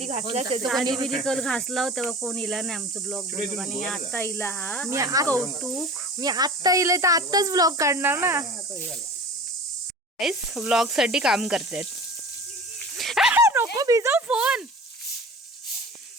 घासला लादी बिदी कल घासला तेव्हा कोण इला नाही आमचं ब्लॉग बनवून. आणि आता इला हा मी कौतुक. मी आत्ता इले तर आत्ताच ब्लॉग काढणार ना. ब्लॉग साठी काम करतात. नको भिजव फोन.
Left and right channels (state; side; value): normal; both; correlation 0.38